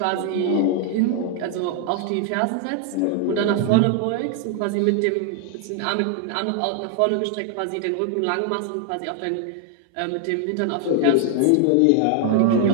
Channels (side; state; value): both; different; correlation 0.00